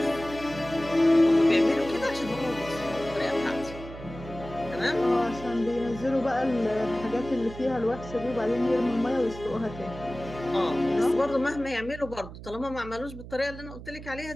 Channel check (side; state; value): right; noise; hum, 13 dB below the sound